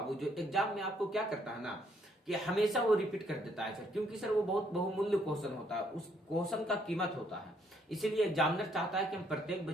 जो एग्जाम में आपको क्या करता है ना कि हमेशा वो रिपीट कर देता है सर, क्योंकि सर वो बहुत बहुमूल्य क्वेश्चन होता है, उस क्वेश्चन का कीमत होता है। इसीलिए एग्जामिनर चाहता है कि हम प्रत्येक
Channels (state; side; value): normal; both; correlation 0.69